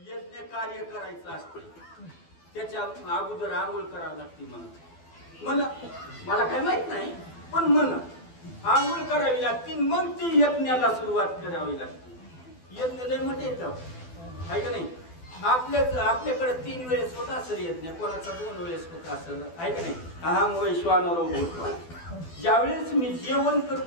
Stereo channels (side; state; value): right; late; 12 ms